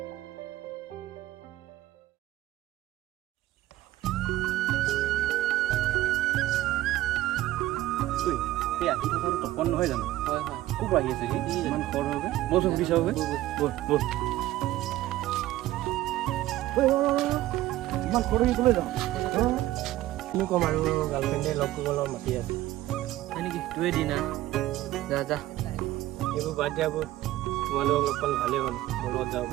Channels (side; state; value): left; quieter; 15.5 dB